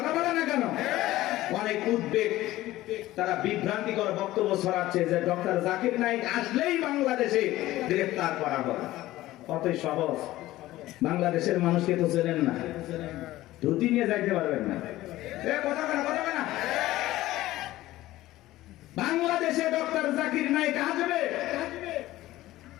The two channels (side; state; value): right; quieter; 16.2 dB